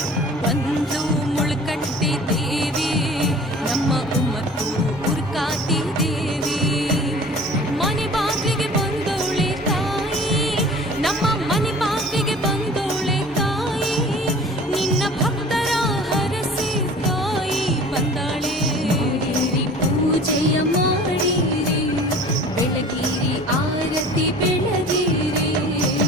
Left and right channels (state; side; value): normal; both; correlation 0.44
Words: ಬಂದ್ಲು ಮುಳ್ಕಟ್ಟಿ ದೇವಿ ನಮ್ಮ ಉಮ್ಮತ್ತೂರು ಉರ್ಕಾತಿ ದೇವಿ. ಮನೆ ಬಾಗಿಲಿಗೆ ಬಂದೋಳೆ ತಾಯಿ, ನಮ್ಮ ಮನೆ ಬಾಗಿಲಿಗೆ ಬಂದೋಳೆ ತಾಯಿ. ನಿನ್ನ ಭಕ್ತರ ಹರಸಿ ತಾಯಿ ಬಂದಾಳೆ. ಪೂಜೆಯ ಮಾಡಿರಿ, ಬೆಳಗಿರಿ ಆರತಿ ಬೆಳಗಿರಿ.